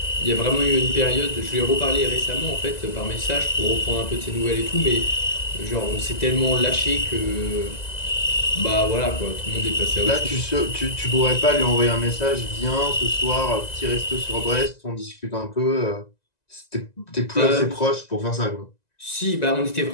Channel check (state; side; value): late; right; 1.9 ms